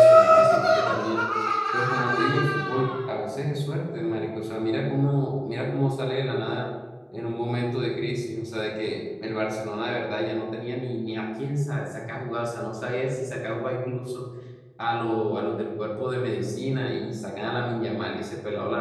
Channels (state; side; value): identical; both; correlation 1.00